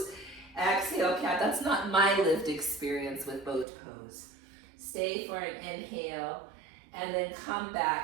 Exhale, cat. That's not my lived experience with boat pose. Stay for an inhale and then come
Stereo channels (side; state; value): left; drops out; at 3.7 s